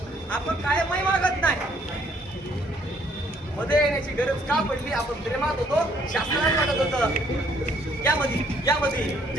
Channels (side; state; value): both; normal; correlation 0.64